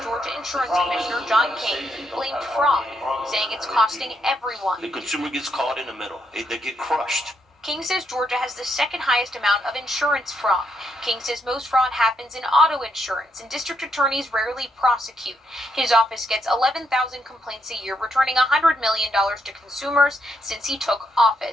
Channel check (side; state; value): both; normal; correlation 0.77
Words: Georgia Insurance Commissioner John King blamed fraud, saying it's costing everyone. The consumer gets caught in the middle. They get crushed. King says Georgia has the second highest amount of insurance fraud. King says most fraud happens in auto insurance, and district attorneys rarely prosecute. His office gets 11,000 complaints a year, returning $100 million to consumers since he took